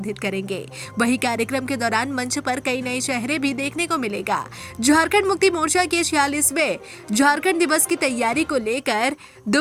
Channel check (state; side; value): identical; both; correlation 1.00